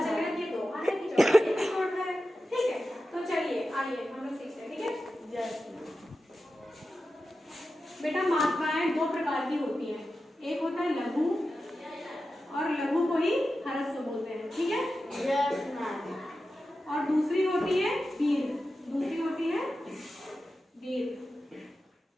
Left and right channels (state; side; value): normal; both; correlation 0.92